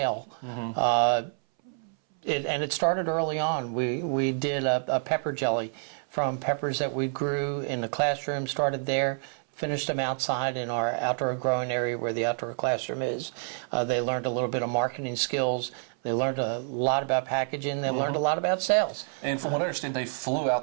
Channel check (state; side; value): silent; left; 59 dB below the other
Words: And it started early on. We did a pepper jelly from peppers that we grew in the classroom, started there, finished them outside in our outdoor growing area where the outdoor classroom is. They learned a little bit of marketing skills. They learned a lot about packaging. They learned a lot about sales. And from what I understand, they flew out